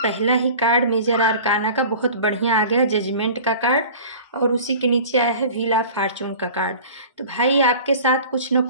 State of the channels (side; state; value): both; inverted; correlation -0.41